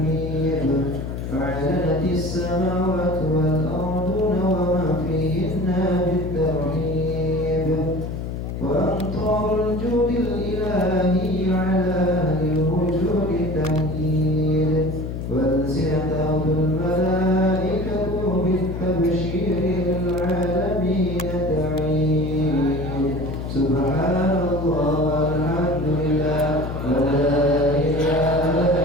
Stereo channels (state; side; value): noise; left; hum, 5 dB below the sound